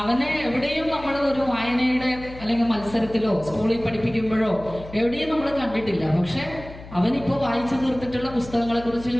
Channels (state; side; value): noise; left; hum, 16 dB below the sound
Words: അവനെ എവിടെയും നമ്മൾ ഒരു വായനയുടെ അല്ലെങ്കിൽ മത്സരത്തിലോ സ്കൂളിൽ പഠിപ്പിക്കുമ്പോഴോ എവിടെയും നമ്മൾ കണ്ടിട്ടില്ല. പക്ഷെ അവനിപ്പോ വായിച്ചു തീർത്തിട്ടുള്ള പുസ്തകങ്ങളെ കുറിച്ച്